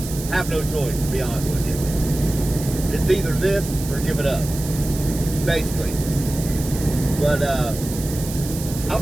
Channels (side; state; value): right; noise; hiss, 11 dB below the sound